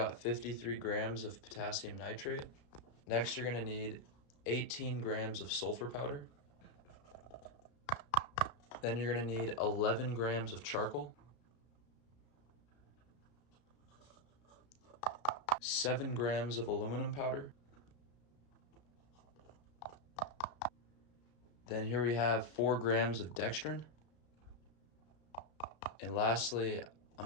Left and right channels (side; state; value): right; late; 33 ms